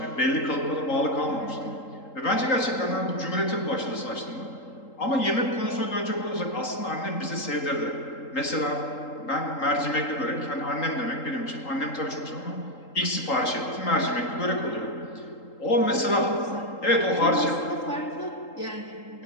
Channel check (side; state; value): right; late; 3.8 ms